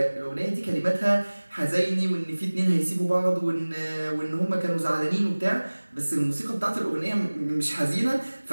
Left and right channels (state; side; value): inverted; both; correlation -1.00